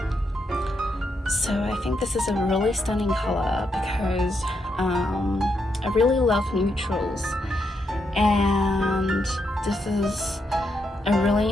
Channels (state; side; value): normal; both; correlation 0.80